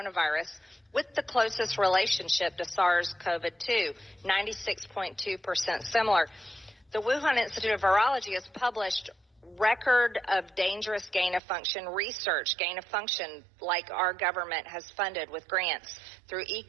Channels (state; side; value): drops out; left; at 11.4 s